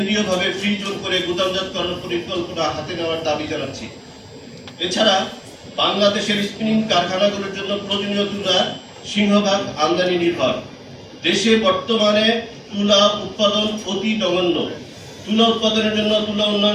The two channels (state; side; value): identical; both; correlation 1.00